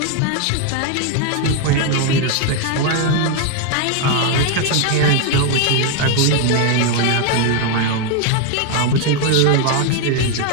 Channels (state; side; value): different; both; correlation 0.01